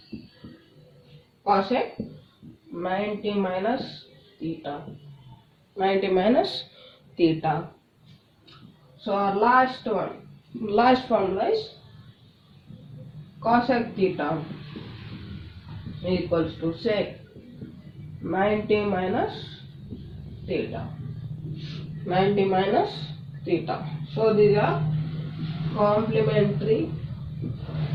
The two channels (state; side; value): identical; both; correlation 1.00